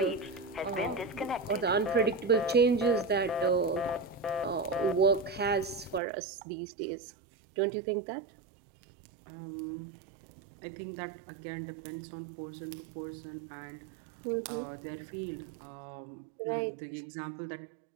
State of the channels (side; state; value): left; drops out; at 6.0 s